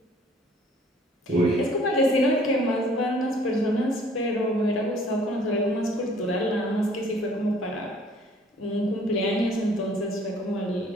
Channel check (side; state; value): both; normal; correlation 0.56